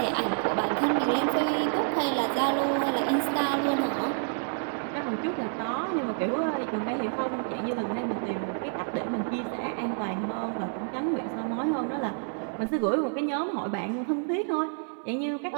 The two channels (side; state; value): left; silent; 59 dB below the other